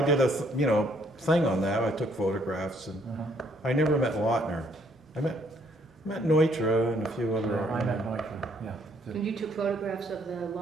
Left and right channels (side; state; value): both; normal; correlation 0.67